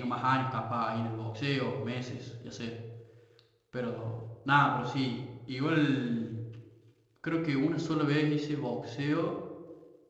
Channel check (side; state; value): both; identical; correlation 1.00